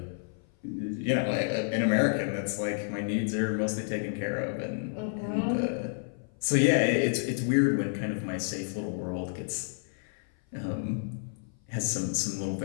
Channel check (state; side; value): silent; right; 55 dB below the other